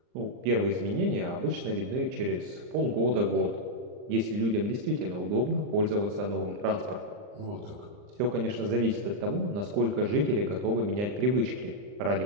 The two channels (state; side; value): late; left; 39 ms